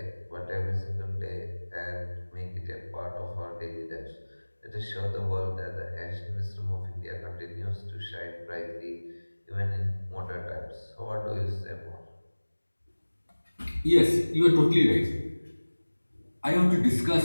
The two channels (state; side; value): inverted; both; correlation -1.00